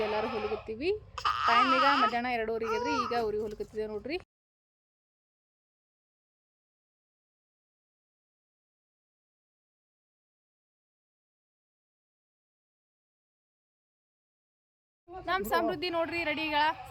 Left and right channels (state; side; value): identical; both; correlation 1.00